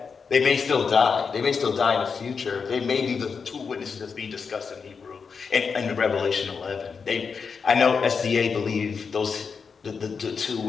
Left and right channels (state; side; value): quieter; right; 5.6 dB